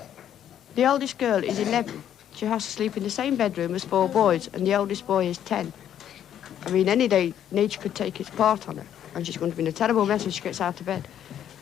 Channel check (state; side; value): quieter; right; 10.0 dB